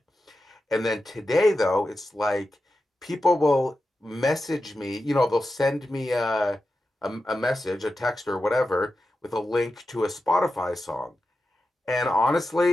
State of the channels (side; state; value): both; normal; correlation 0.91